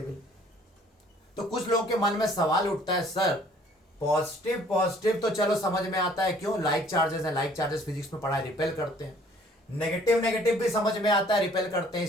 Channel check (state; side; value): normal; both; correlation 0.57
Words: तो कुछ लोगों के मन में सवाल उठता है, सर पॉजिटिव पॉजिटिव तो चलो समझ में आता है, क्यों, लाइक चार्जेस है, लाइक चार्जेस फिजिक्स में पढ़ा है, रिपेल करते हैं। नेगेटिव नेगेटिव भी समझ में आता है, रिपेल करते हैं,